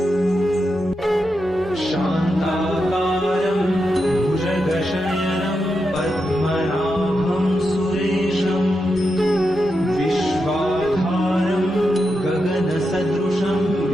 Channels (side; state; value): both; normal; correlation 0.86